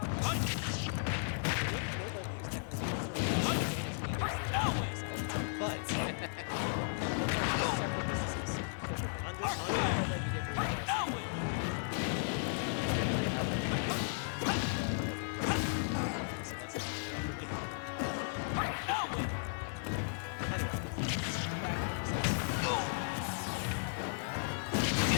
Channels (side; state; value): right; silent; 54 dB below the other